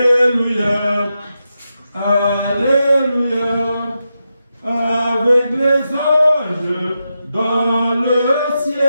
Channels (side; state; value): both; inverted; correlation -0.88